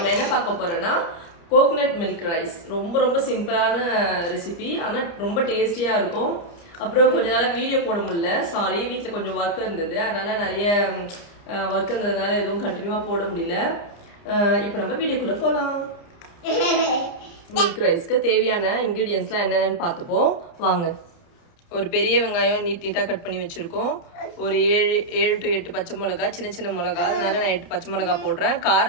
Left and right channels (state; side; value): late; right; 29 ms